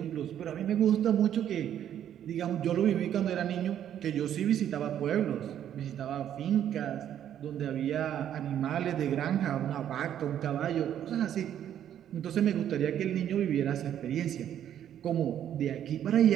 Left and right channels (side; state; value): left; quieter; 10.3 dB